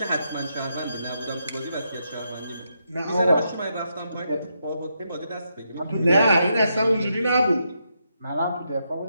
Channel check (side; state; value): both; inverted; correlation -0.81